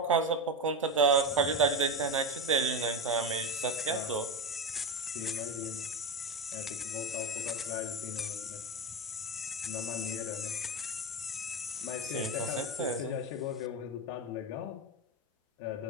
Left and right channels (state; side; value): normal; both; correlation 0.17